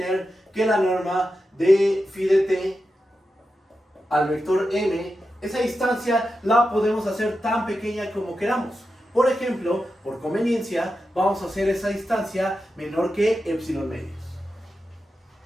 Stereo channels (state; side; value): normal; both; correlation 0.90